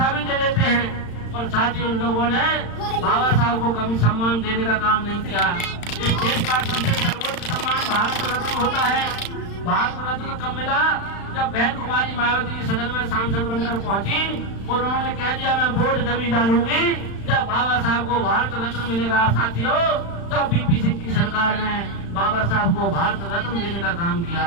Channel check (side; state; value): right; late; 35 ms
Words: भी दे देते हैं, पर साथियों उन लोगों ने बाबा साहब को कभी सम्मान देने का काम नहीं किया। इस देश का सबसे सर्वोच्च सम्मान भारत रत्न होता है। भारत रत्न कब मिला? जब बहन कुमारी मायावती सदन में सांसद बनकर पहुंची और उन्होंने कह दिया मैं वोट जब डालूंगी जब बाबा साहब को भारत रत्न मिलेगा। साथियों, तब बीपी सिंह की सरकार ने बाबा साहब को भारत रत्न देने का काम